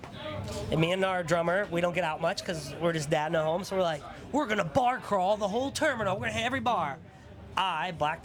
And me and our drummer, we don't get out much because we're just dad in a home. So we're like, we're going to bar crawl the whole terminal. We're going to hit every bar. I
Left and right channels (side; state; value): both; identical; correlation 1.00